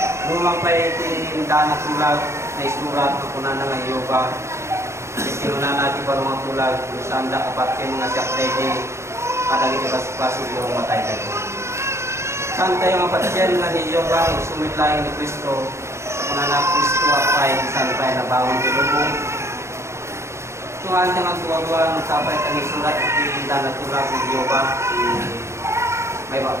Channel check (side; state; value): left; late; 0.13 ms